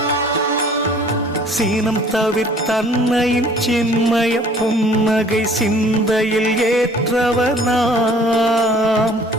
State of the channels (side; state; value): both; normal; correlation 0.54